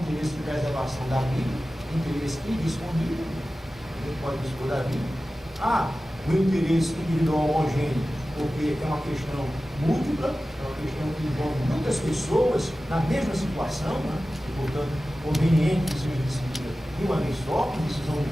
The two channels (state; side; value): normal; both; correlation 0.95